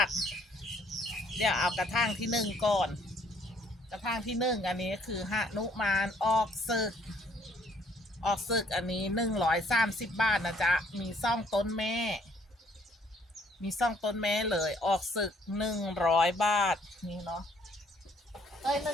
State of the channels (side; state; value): both; normal; correlation 0.64